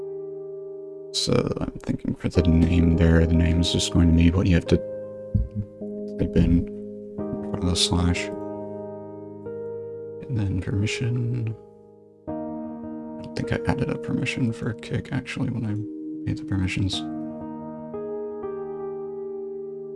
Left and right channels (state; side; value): identical; both; correlation 1.00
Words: So I'm thinking for the name there, the name is just going to be what you have to type in front of the slash. And then permission. I don't think I added a permission for kick actually when I made the permissions.